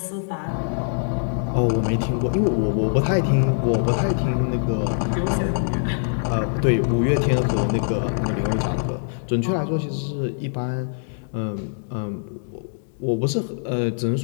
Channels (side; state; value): right; silent; digital silence